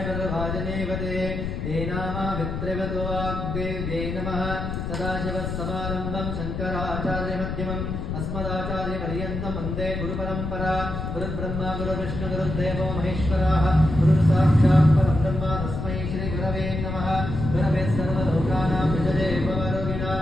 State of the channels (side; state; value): left; noise; rumble, 4 dB below the sound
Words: वरवाजनेवते देनामावित्रिवतो वाग्देव्यै नमः। सदाशिवस्समारम्भं शङ्कराचार्यमध्यमम् अस्मदाचार्यपर्यन्तं वन्दे गुरुपरम्परा। गुरुर्ब्रह्मा गुरुर्विष्णु गुरुर्देवो महेश्वरः गुरुर्साक्षात् परब्रह्म तस्मै श्रीगुरवे नमः। गुरवे सर्वलोकानां विजये भवरोगिणां